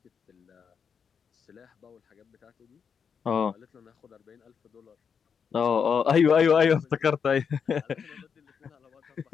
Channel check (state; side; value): quieter; right; 6.7 dB